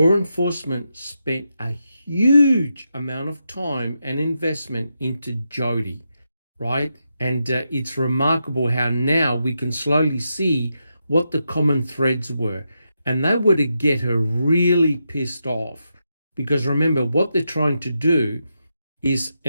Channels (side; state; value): both; inverted; correlation -0.85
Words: enforcement spent a huge amount of time and investment into Jodi, right? And it's remarkable how now we can slowly see what the common threads were. And they were to get her really pissed off. Because remember, what they're trying to do is,